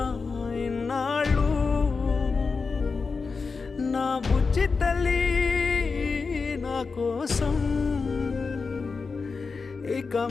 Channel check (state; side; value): quieter; right; 4.7 dB